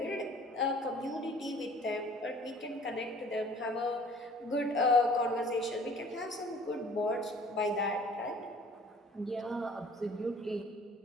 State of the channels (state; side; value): normal; both; correlation 0.51